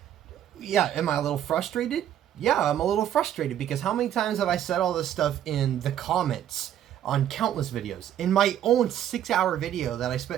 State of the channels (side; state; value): left; quieter; 10.8 dB